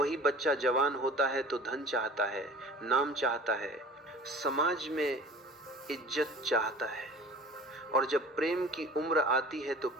बच्चा जवान होता है तो धन चाहता है, नाम चाहता है, समाज में इज्जत चाहता है। और जब प्रेम की उम्र आती है तो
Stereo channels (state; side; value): normal; both; correlation 0.42